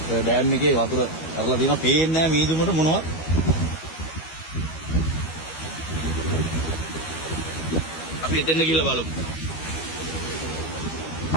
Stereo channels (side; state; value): right; late; 12 ms